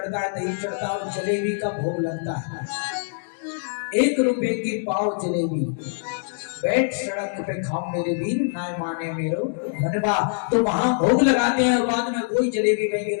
है, दही चढ़ता है और जलेबी का भोग लगता है। 1 रुपए की पाव जलेबी, बैठ सड़क पे खाओ मेरे वीर, ना माने मेरो मनवा। तो वहां भोग लगाते हैं और बाद में कोई जलेबी वही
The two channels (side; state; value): right; silent; digital silence